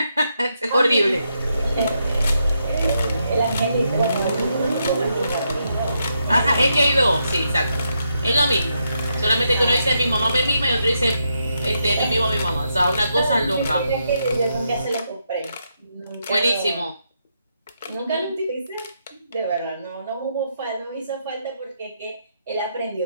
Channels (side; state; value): both; inverted; correlation -0.81